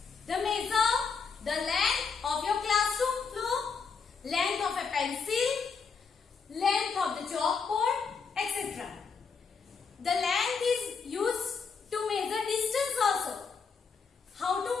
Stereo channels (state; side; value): quieter; right; 5.5 dB